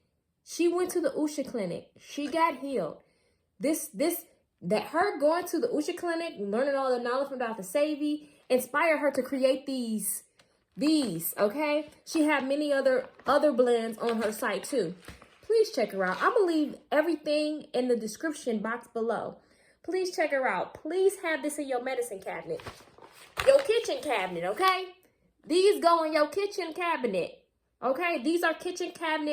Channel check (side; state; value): both; identical; correlation 1.00